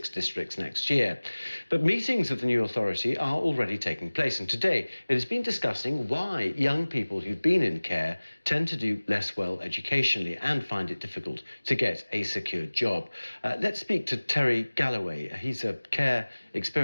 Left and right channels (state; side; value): inverted; both; correlation -1.00